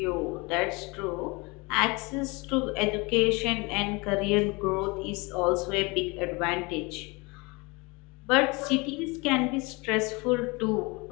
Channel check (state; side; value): quieter; right; 27.0 dB